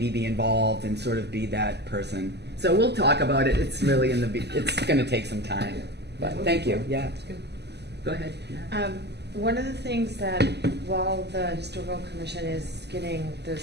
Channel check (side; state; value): left; late; 0.49 ms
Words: be involved and sort of be that person. So we'll talk about it. It's really it's going to take some time, but thank you. Yeah. Go ahead. One of the things that, while the Historical Commission is getting